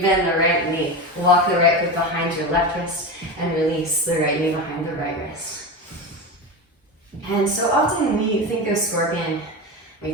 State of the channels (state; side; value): normal; both; correlation 0.22